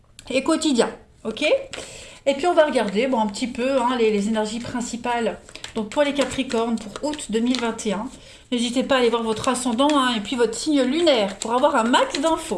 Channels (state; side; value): identical; both; correlation 1.00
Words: et quotidiens. Ok? Et puis, on va regarder un petit peu les énergies principales. Donc, pour les Capricornes, pour août 2021. N'hésitez pas à aller voir votre ascendant et puis votre signe lunaire pour avoir un max